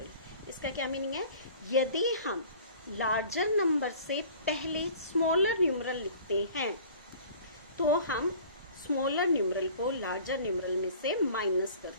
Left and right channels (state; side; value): inverted; both; correlation -0.47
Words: इसका क्या मीनिंग है, यदि हम लार्जर नंबर से पहले स्मॉलर न्यूमरल लिखते हैं तो हम स्मॉलर न्यूमरल को लार्जर न्यूमरल में से माइनस